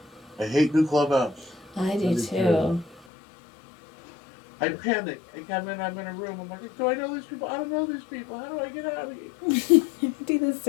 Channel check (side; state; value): right; drops out; at 3.1 s